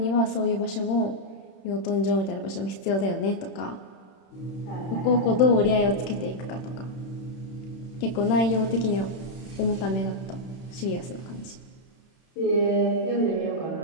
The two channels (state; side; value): late; right; 31 ms